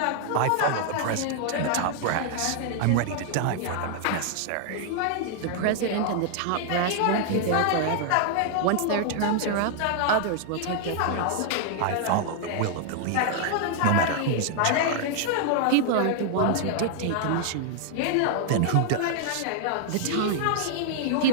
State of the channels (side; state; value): both; different; correlation 0.00